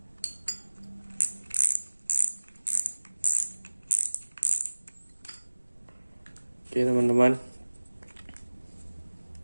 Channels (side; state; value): both; inverted; correlation -1.00